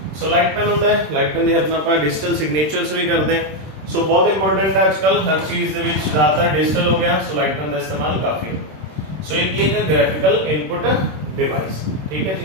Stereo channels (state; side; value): late; left; 26 ms